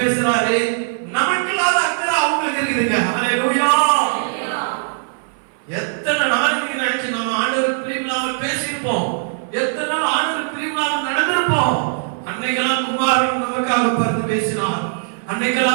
பேசுறாரு. நமக்கு இல்லாத அக்கறை அவங்களுக்கு இருக்குதுங்க. ஹல்லேலூயா. எத்தனை நாளைக்கு நினைச்சு நம்ம ஆண்டவருக்கு பிரியமில்லாமல் பேசியிருப்போம். எத்தனை நாள் ஆண்டவருக்கு பிரியமில்லாமல் நடந்திருப்போம். அன்னைக்கெல்லாம் குமாரன் நமக்காக பரிந்து பேசினார்.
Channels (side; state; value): left; silent; 59 dB below the other